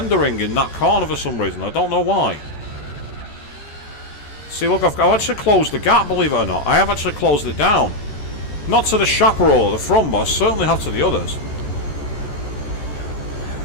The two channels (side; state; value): right; late; 14 ms